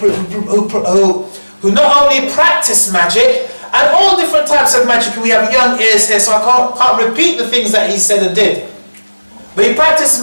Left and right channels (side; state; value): both; inverted; correlation -1.00